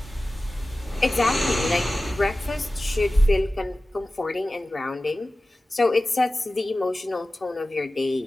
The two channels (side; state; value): both; normal; correlation 0.96